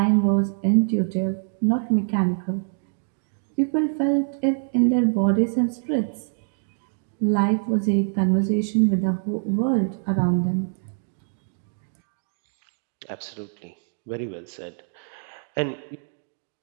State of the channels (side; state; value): left; silent; 62 dB below the other